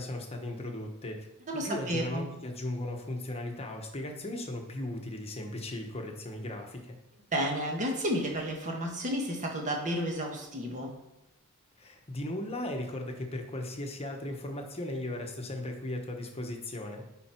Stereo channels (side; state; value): both; normal; correlation 0.41